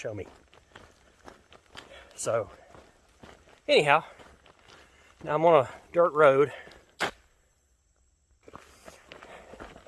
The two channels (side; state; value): both; identical; correlation 1.00